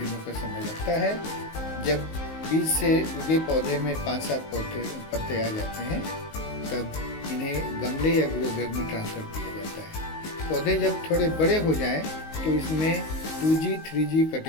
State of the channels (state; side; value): late; right; 19 ms